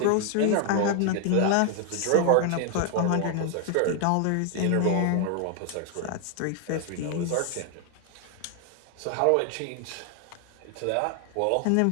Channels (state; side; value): different; both; correlation 0.00